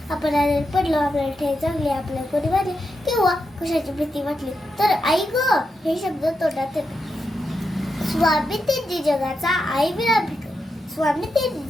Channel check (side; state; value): both; normal; correlation 0.86